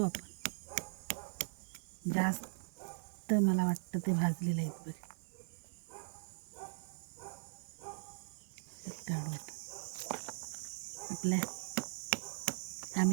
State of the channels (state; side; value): silent; left; digital silence